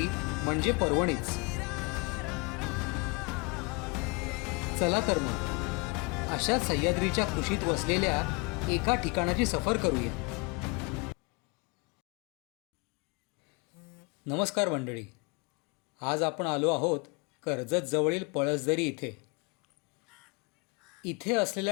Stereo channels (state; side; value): quieter; right; 29.8 dB